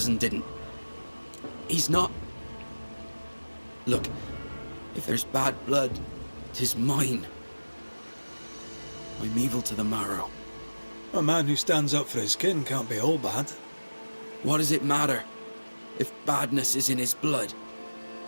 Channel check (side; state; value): both; inverted; correlation -1.00